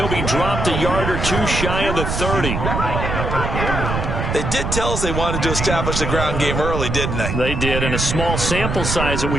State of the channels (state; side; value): noise; right; rumble, 2 dB below the sound